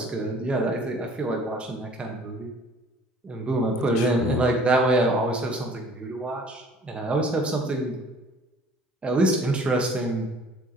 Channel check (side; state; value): both; normal; correlation 0.52